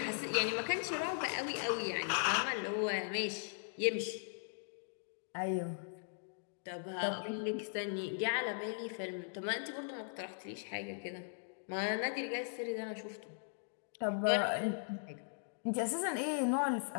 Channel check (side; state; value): right; silent; digital silence